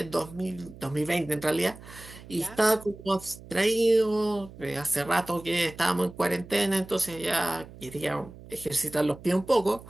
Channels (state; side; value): noise; right; hum, 18 dB below the sound